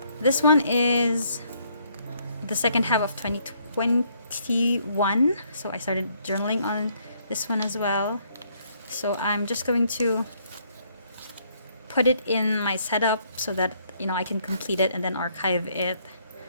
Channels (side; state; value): both; inverted; correlation -0.69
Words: this one is the second half of 2021. So I started journaling on this one as well. So I'm just going to put it in my setup so that I can complete it and then archive it